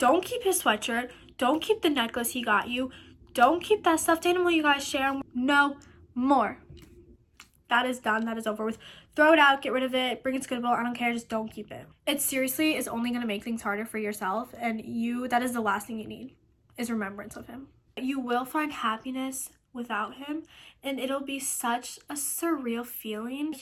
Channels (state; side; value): identical; both; correlation 1.00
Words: keep his sweatshirt. Don't keep the necklace he got you. Don't keep that stuffed animal you guys share. No more. That is done. That is over with. Throw it out. Get rid of it. Bring it to Goodwill. I don't care. Just don't keep it. It seriously is only going to make things harder for yourself, and that is the last thing you need, is remembrance of him. You will find happiness without him, and it'll be such a surreal feeling. A